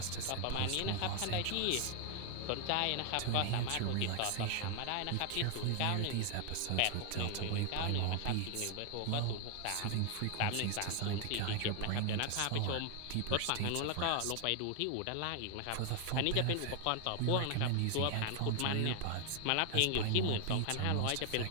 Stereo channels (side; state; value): both; different; correlation 0.00